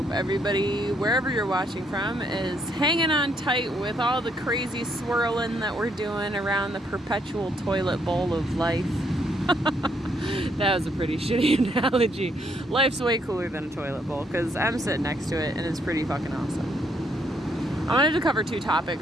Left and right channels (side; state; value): both; normal; correlation 0.72